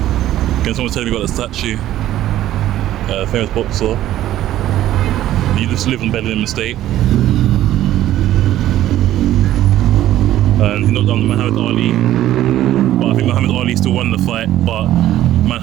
Again, someone's telling me about the statue. Famous boxer. He used to live on Bellingham Estate. And he knocked down Muhammad Ali. But I think Muhammad Ali still won the fight, but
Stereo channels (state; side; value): quieter; left; 13.4 dB